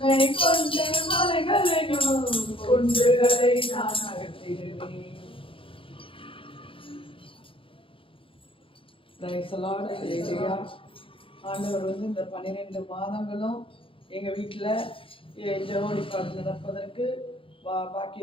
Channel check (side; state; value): right; late; 0.26 ms